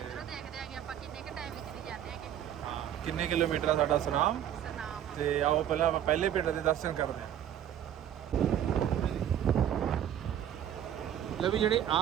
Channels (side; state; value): left; quieter; 10.4 dB